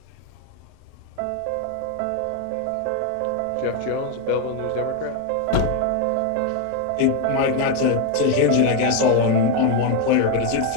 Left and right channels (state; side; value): different; both; correlation 0.02